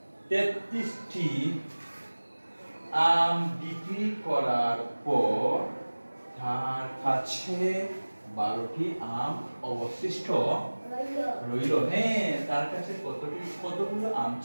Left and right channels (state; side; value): inverted; both; correlation -1.00